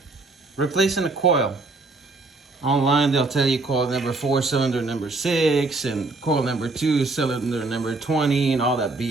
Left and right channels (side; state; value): left; quieter; 3.4 dB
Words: replacing the coil. Online, they'll tell you coil number 4, cylinder number 6, and coil number 2, cylinder number 20, and all that